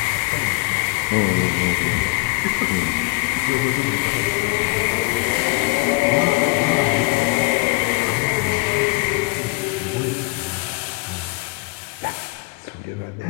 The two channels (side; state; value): right; quieter; 26.2 dB